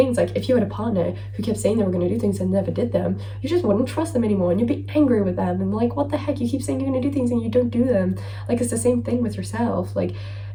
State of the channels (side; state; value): both; identical; correlation 1.00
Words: like if you had a partner who kept saying they were gonna do things and never did them, you just wouldn't trust them anymore, and you'd be angry with them and like, what the heck, you keep saying you're gonna do things and you don't do them. Like it's the same thing with yourself. Like